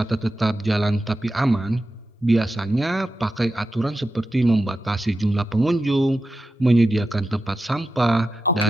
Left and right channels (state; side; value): normal; both; correlation 0.90